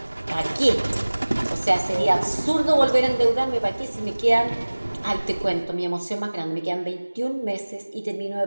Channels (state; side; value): inverted; both; correlation -1.00